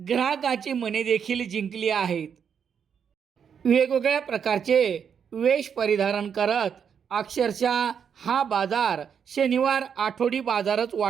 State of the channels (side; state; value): left; quieter; 7.4 dB